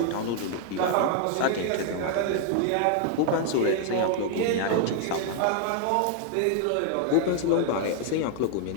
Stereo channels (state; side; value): different; both; correlation 0.00